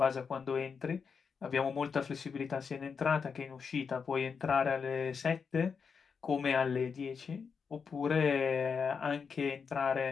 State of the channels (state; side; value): quieter; right; 5.9 dB